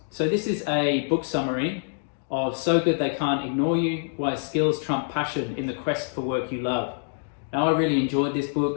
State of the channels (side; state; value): right; silent; digital silence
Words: so this is a book summary of So Good They Can't Ignore You, Why Skills Trump Passion in the Quest for Work You Love. Now I really enjoyed this